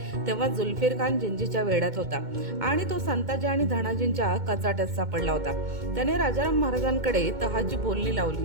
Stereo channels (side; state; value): left; late; 2.2 ms